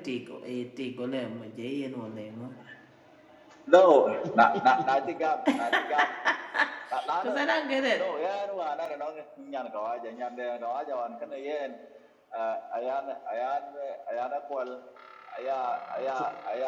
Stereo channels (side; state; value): both; identical; correlation 1.00